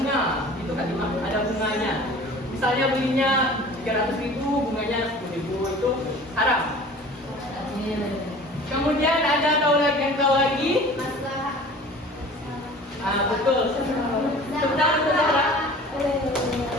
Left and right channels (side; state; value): both; normal; correlation 0.44